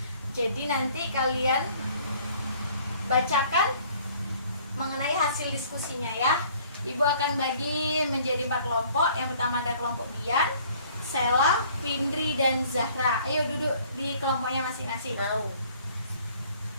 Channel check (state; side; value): inverted; both; correlation -0.56